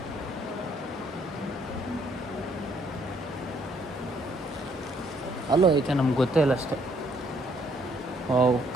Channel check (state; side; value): normal; both; correlation 0.67